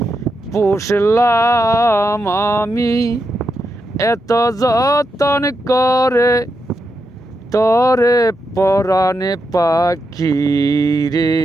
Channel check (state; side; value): normal; both; correlation 0.85